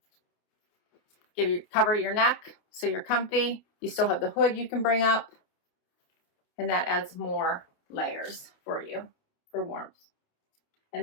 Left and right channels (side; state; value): right; late; 29 ms